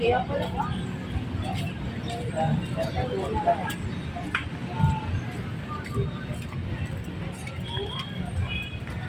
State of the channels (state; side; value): identical; both; correlation 1.00